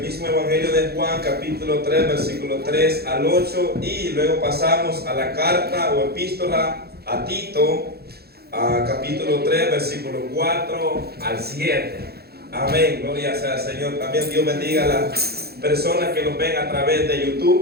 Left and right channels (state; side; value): late; left; 0.46 ms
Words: Evangelio de Juan, capítulo 3, versículo 3 al 8. Y luego pasamos a la carta o epístola a Tito, capítulo 3, versículo 4 al 7. Amén, gloria sea al Señor. También Dios bendiga a las personas que nos ven a través de